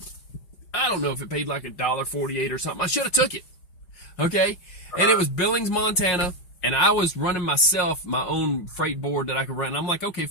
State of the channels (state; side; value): late; right; 5.5 ms